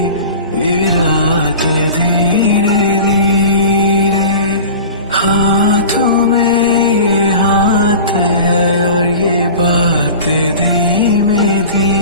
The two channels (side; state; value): both; inverted; correlation -0.37